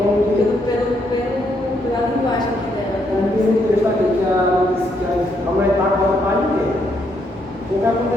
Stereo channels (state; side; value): normal; both; correlation 0.75